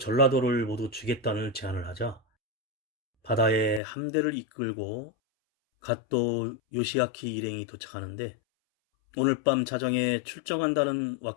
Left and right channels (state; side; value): drops out; right; at 3.8 s